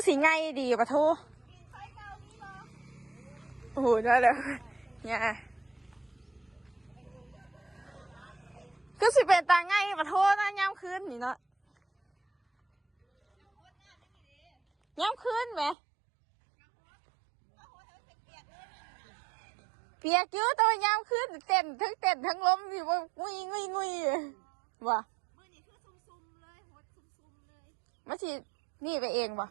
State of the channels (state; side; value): drops out; left; at 15.8 s